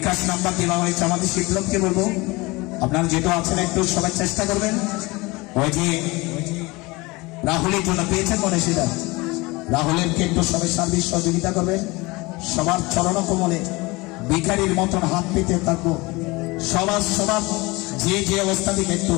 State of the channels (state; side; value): quieter; right; 23.5 dB